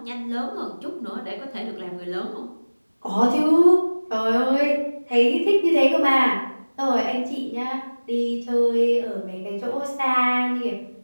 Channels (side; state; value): both; inverted; correlation -1.00